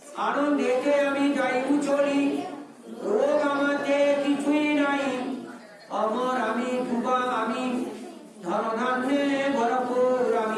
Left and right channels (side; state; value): both; identical; correlation 1.00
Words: আনন্দেতে আমি যাই চলি, রোগ আমাকে কিছুই নাই। অমর আমি, যুবা আমি, ধনধান্যে ভরপুর